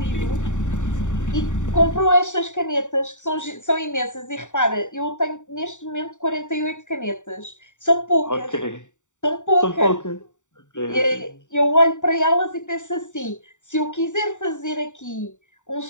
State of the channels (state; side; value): late; right; 0.86 ms